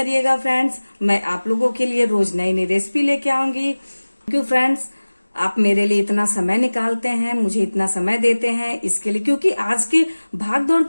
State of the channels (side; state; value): both; inverted; correlation -1.00